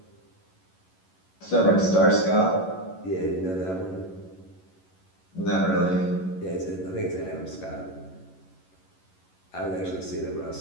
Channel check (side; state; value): right; late; 11 ms